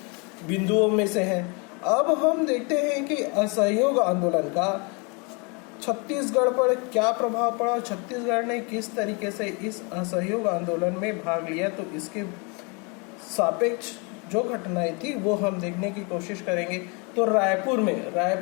बिंदुओं में से है। अब हम देखते हैं कि असहयोग आंदोलन का छत्तीसगढ़ पर क्या प्रभाव पड़ा, छत्तीसगढ़ ने किस तरीके से इस असहयोग आंदोलन में भाग लिया। तो इसके सापेक्ष जो घटनाएं थी वो हम देखने की कोशिश करेंगे। तो रायपुर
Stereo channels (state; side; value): quieter; right; 32.2 dB